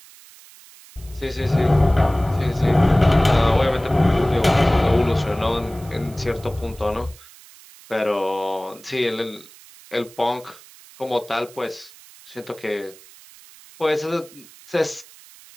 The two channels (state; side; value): noise; right; hiss, 22 dB below the sound